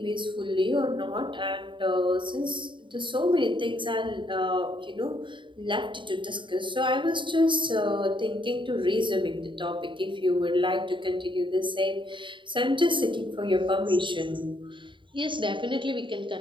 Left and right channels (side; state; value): left; late; 0.24 ms